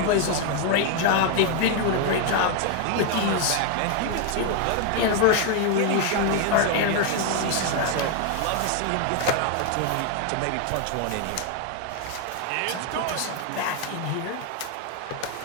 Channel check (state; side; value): different; both; correlation 0.01